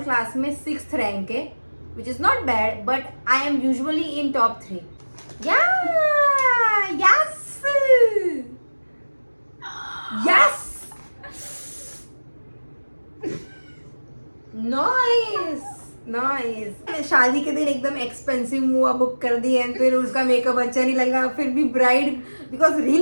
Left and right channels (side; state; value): both; inverted; correlation -1.00